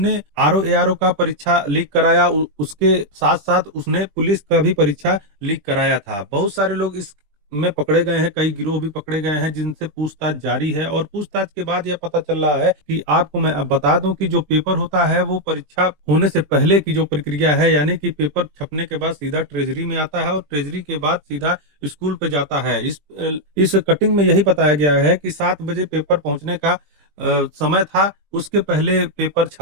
आरओ एआरओ का परीक्षा लीक कराया, उसके साथ साथ उसने पुलिस का भी परीक्षा लीक कराया था। बहुत सारे लोग इस में पकड़े गए हैं, कई गिरोह भी पकड़े गए हैं जिनसे पूछताछ जारी है। और पूछताछ के बाद यह पता चल रहा है कि आपको मैं अब बता दूं कि जो पेपर होता है वो परीक्षा होने से पहले की जो प्रक्रिया है, यानी कि पेपर छपने के बाद सीधा ट्रेजरी में आता है और ट्रेजरी के बाद सीधा स्कूल पे जाता है। इस कटिंग में यही बताया गया है कि 7 बजे पेपर पहुंचने का समय था। उसके पहले पेपर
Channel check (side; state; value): left; late; 20 ms